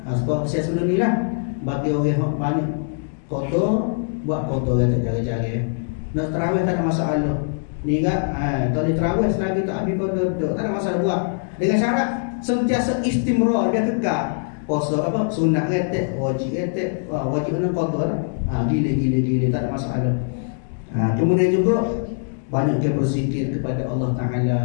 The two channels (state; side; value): silent; right; digital silence